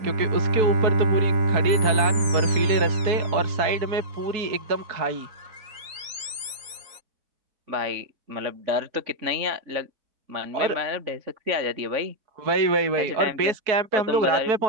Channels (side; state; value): left; late; 3.9 ms